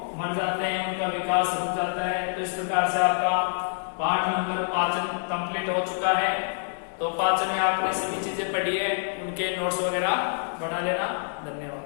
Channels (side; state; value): right; silent; digital silence